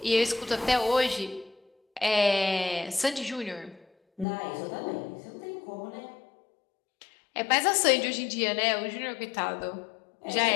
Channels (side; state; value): right; drops out; at 4.2 s